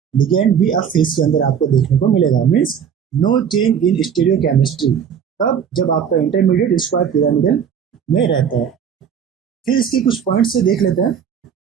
लिगेंड भी अप फेस के अंदर आपको देखने को मिलेगा। Means no change in stereochemistry, तब जब आपका इंटरमीडिएट स्क्वायर पिरामिडल में रहता है। फिर इसके कुछ पॉइंट से देख लेते हैं।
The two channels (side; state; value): left; quieter; 7.8 dB